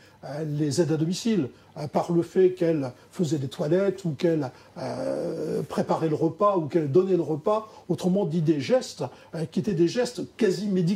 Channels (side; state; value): both; identical; correlation 1.00